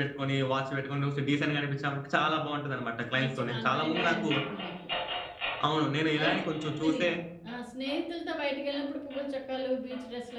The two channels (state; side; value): identical; both; correlation 1.00